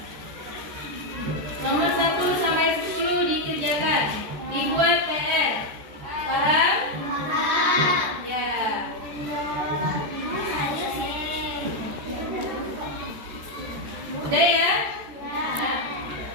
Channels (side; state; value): left; late; 13 ms